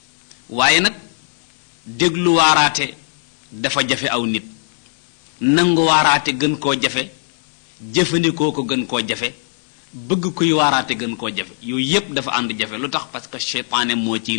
waaye nag déglu waaraate dafa jafe aw nit nangu waaraate gën koo jafe jëfandikoo ko gën koo jafe bëgg kuy waaraate gën koo jafe yooyu yépp dafa ànd jafe lu tax parce que seytaane moo ciy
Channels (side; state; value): right; silent; 66 dB below the other